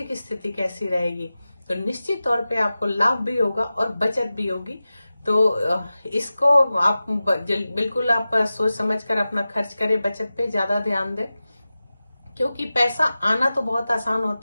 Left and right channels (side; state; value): both; inverted; correlation -0.95